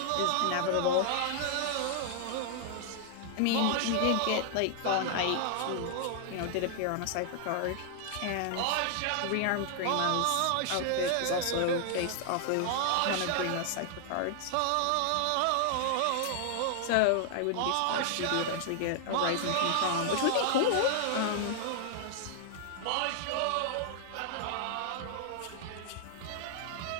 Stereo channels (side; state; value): both; different; correlation 0.00